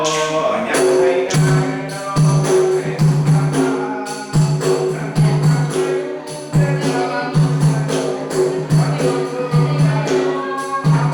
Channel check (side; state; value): both; identical; correlation 1.00